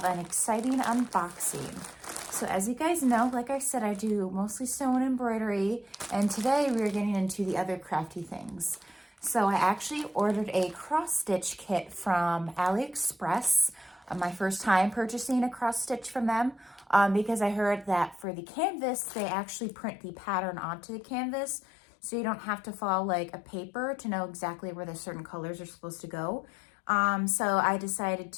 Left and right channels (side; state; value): right; drops out; at 18.2 s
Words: an exciting unboxing. So as you guys know, like I said, I do mostly sewing and embroidery, and today we're getting into the other crafty things. So I actually ordered a cross-stitch kit from AliExpress. My first time purchasing a cross-stitch from them. Because I heard that for the canvas, they actually print the pattern onto the canvas, so you don't have to follow like a paper to know exactly where the certain colors are supposed to go. So I decided